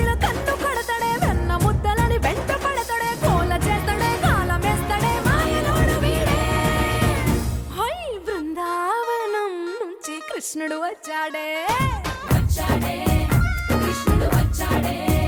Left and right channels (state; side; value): identical; both; correlation 1.00